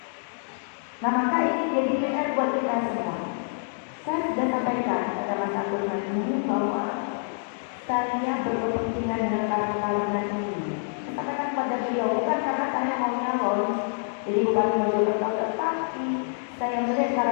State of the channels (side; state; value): right; silent; 60 dB below the other